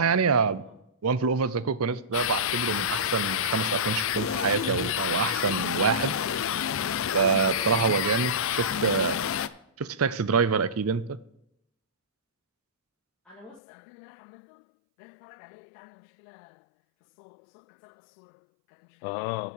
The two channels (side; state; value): right; drops out; at 13.6 s